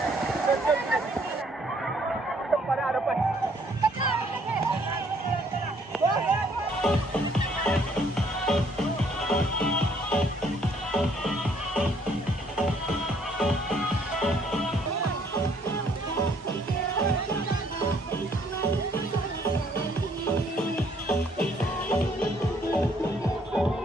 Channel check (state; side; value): normal; both; correlation 0.64